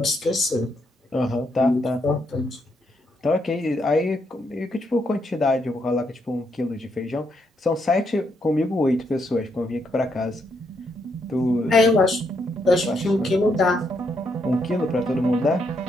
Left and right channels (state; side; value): normal; both; correlation 0.77